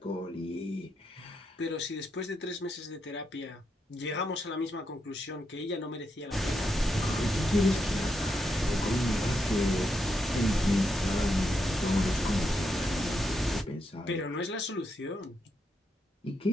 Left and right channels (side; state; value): both; normal; correlation 0.82